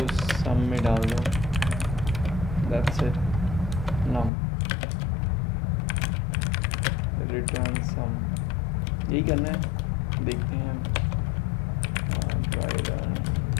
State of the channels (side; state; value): right; drops out; at 4.3 s